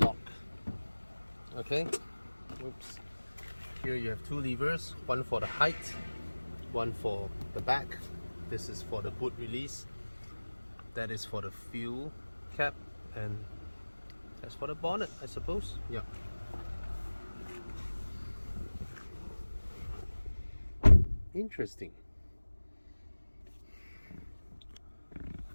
Okay, oops. Here you have two levers, one for the height, one for the back. This is for the boot release, that is for the fuel cap, and that's for the bonnet, I suppose. Yeah. Interesting.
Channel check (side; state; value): both; inverted; correlation -1.00